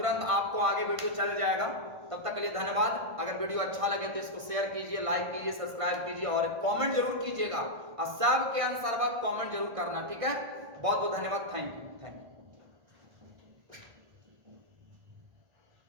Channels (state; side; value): late; left; 1.5 ms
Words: आपको आगे वीडियो चल जाएगा। तब तक के लिए धन्यवाद। अगर वीडियो अच्छा लगे तो इसको शेयर कीजिए, लाइक कीजिए, सब्सक्राइब कीजिए और कमेंट जरूर कीजिएगा, और सबके अनुसार कमेंट जरूर करना, ठीक है? बहुत बहुत धन्यवाद, थैंक यू।